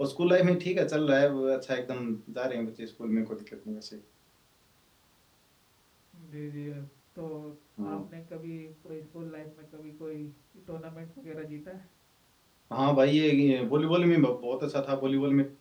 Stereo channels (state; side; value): identical; both; correlation 1.00